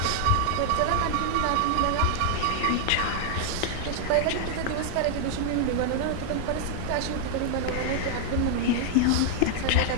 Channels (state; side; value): different; both; correlation -0.01